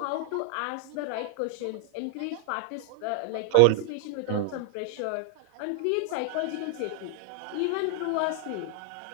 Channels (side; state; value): both; different; correlation 0.00